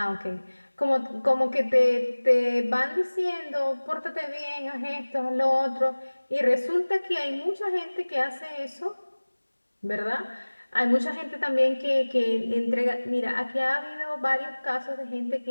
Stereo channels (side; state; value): both; inverted; correlation -1.00